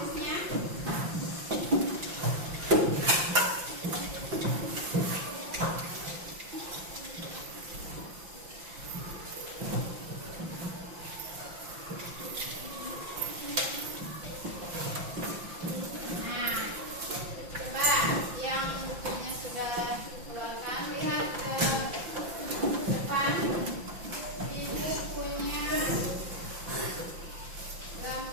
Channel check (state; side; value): late; left; 5.8 ms